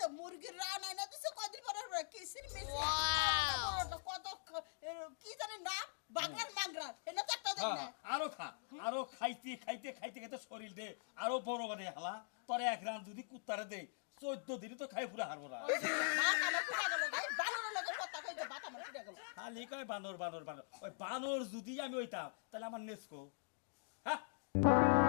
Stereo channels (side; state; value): right; silent; digital silence